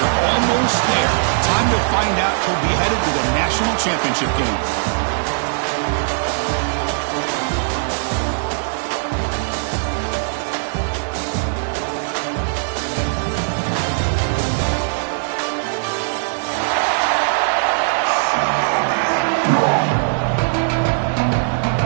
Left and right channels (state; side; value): silent; left; digital silence